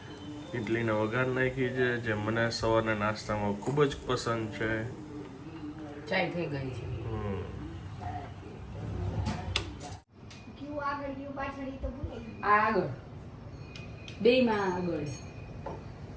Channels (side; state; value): both; identical; correlation 1.00